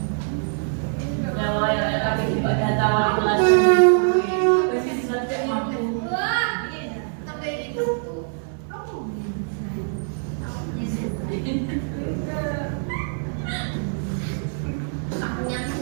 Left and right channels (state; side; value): silent; left; digital silence